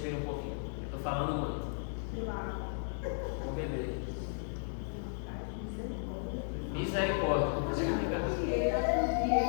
um pouquinho. Eu estou falando muito. Vou beber. Misericórdia.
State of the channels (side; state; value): right; silent; 55 dB below the other